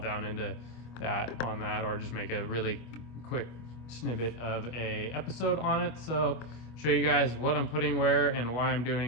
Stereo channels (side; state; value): right; late; 25 ms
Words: into that on that, or just make a really quick snippet of a episode on it. So show you guys what I'm putting where and why I'm